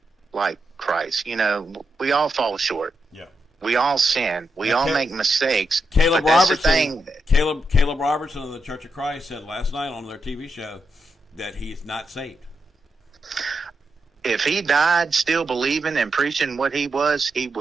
like Christ. We all fall short. Yeah. We all sin. We all make mistakes. Caleb but that's Robertson. the thing. Caleb Robertson of the Church of Christ said last night on their TV show that he's not saved. If he died still believing and preaching what he was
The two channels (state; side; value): normal; both; correlation 0.84